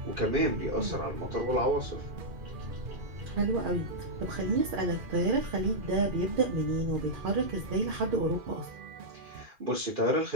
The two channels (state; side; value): late; left; 2.4 ms